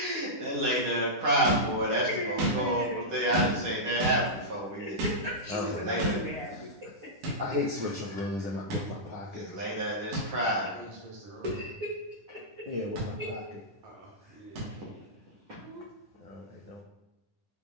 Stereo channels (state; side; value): late; left; 10 ms